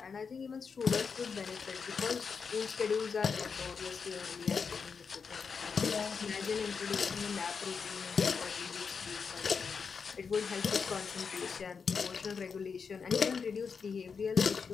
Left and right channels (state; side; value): quieter; right; 5.7 dB